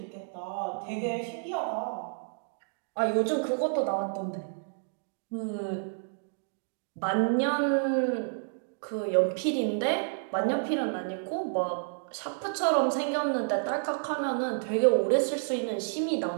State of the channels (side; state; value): left; silent; digital silence